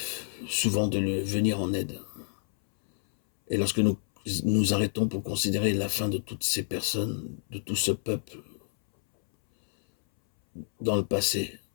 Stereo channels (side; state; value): right; silent; 59 dB below the other